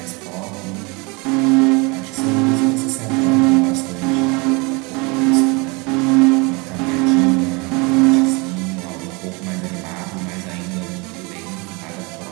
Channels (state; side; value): quieter; left; 28.1 dB